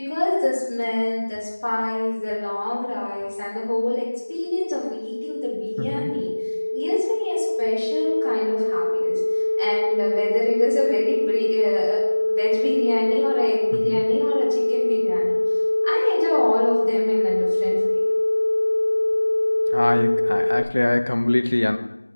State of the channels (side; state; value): both; inverted; correlation -1.00